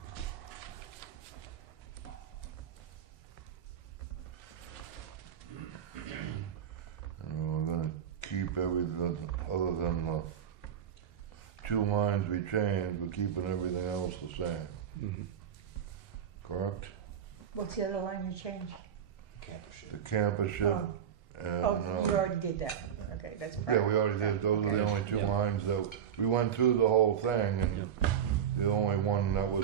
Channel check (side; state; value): left; quieter; 8.6 dB